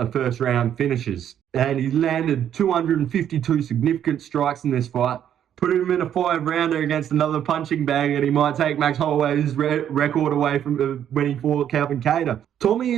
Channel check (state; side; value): quieter; left; 9.9 dB